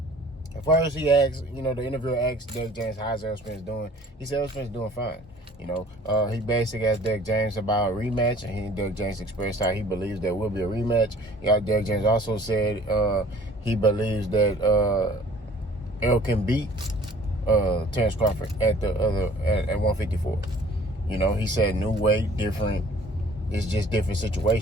at first he asked, you know, the interviewer asked Derrick James, how's Errol Spence doing? He said Errol Spence doing fine. You know, he basically asked Derrick James about a rematch, and Derrick James expressed how he believes there will be a rematch. Derrick James also said he believes that Errol can beat Terrence Crawford at 154. You know, he said new weight, different. It's just different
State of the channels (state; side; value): normal; both; correlation 0.52